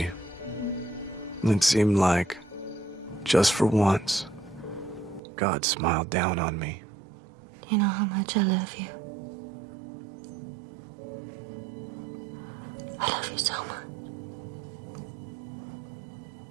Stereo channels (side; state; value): left; drops out; at 5.2 s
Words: It seemed like, just for once, God smiled down on me. You know how much I love you. I love you so much.